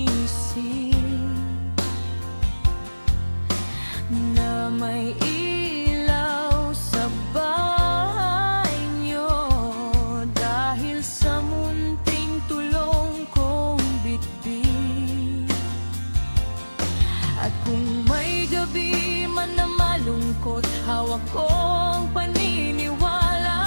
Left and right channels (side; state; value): both; inverted; correlation -1.00